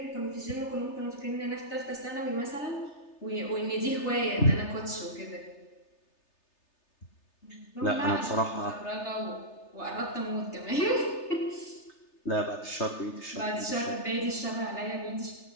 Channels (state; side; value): late; right; 3.3 ms